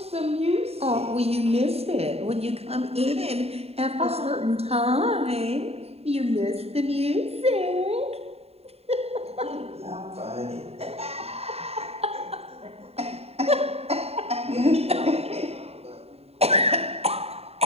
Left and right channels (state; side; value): late; left; 0.29 ms